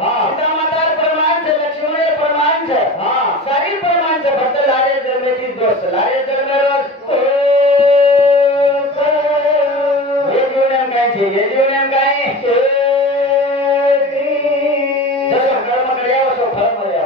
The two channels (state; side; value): normal; both; correlation 0.33